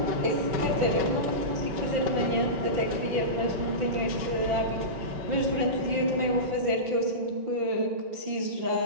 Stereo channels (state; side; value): late; left; 5.8 ms